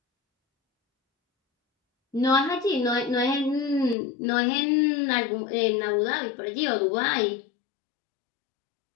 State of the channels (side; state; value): right; drops out; at 4.0 s